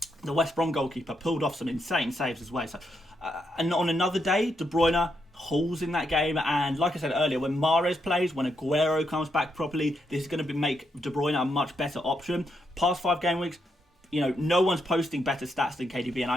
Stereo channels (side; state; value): both; normal; correlation 0.80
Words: the West Brom goalkeeper, pulled off some insane saves as well. So, and on another day, De Bruyne hauls in that game. And like I said earlier, when Mahrez plays, when Aguero comes back properly, this is going to make De Bruyne a much better option. Past 5 game weeks, no one's posting better stats than KDB,